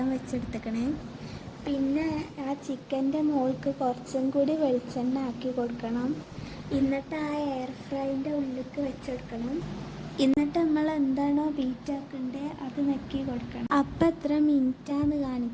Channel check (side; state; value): both; identical; correlation 1.00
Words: വെച്ചെടുത്തേക്കണേ. പിന്നെ ആ ചിക്കൻ്റെ മുകൾക്ക് കുറച്ചും കൂടി വെളിച്ചെണ്ണ ആക്കി കൊടുക്കണം. എന്നിട്ട് ആ എയർ ഫ്രൈൻ്റെ ഉള്ളിലേക്ക് വെച്ചെടുക്കണം. എന്നിട്ട് നമ്മൾ എന്താണോ ബീറ്റാക്കണ്ടേ അത് നെക്കി കൊടുക്കണം. അപ്പം എത്ര മിനിറ്റാന്ന്